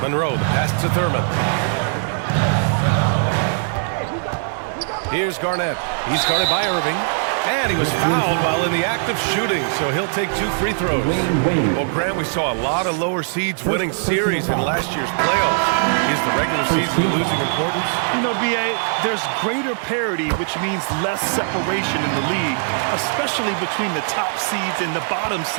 Monroe, the pass to Thurman. Here's Garnett. He's guarded by Irving. And he was fouled while in the act of shooting, so he'll take 2 free throws. Well, Grant, we saw a lot of lower seeds winning series in last year's playoffs. Is the regular season losing importance? You know, B.A., there's greater parity, which means less separation in the league, especially between the top seeds and the bottom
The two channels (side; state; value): left; silent; 65 dB below the other